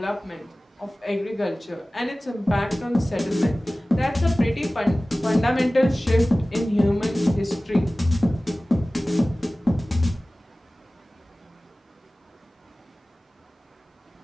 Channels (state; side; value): normal; both; correlation 0.97